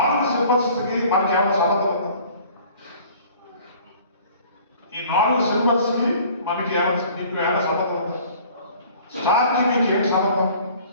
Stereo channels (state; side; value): inverted; both; correlation -0.50